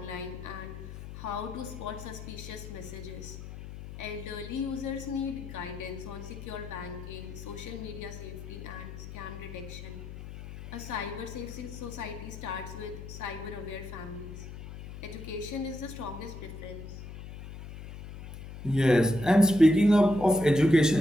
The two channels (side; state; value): left; noise; hum, 11 dB below the sound